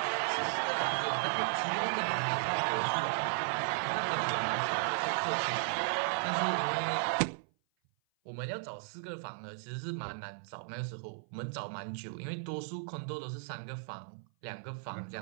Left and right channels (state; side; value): silent; left; 54 dB below the other